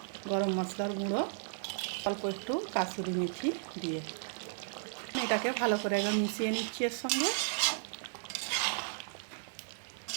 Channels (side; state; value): left; silent; digital silence